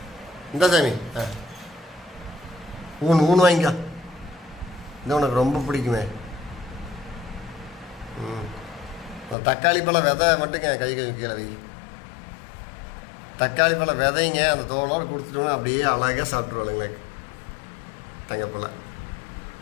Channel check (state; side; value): drops out; right; at 9.3 s